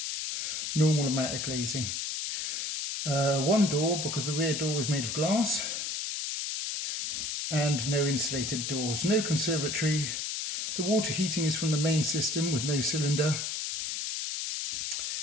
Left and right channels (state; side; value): noise; left; hiss, 3 dB below the sound